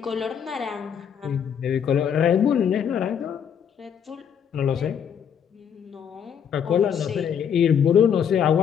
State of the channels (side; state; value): right; quieter; 8.0 dB